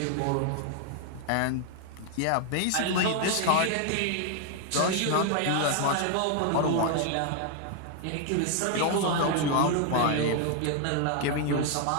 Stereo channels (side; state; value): both; different; correlation 0.00